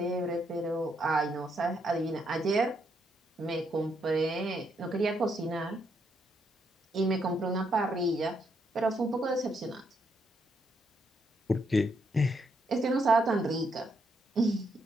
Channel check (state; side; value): normal; both; correlation 0.76